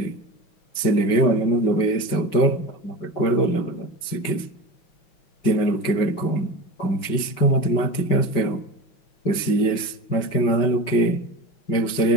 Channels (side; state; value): right; late; 5.2 ms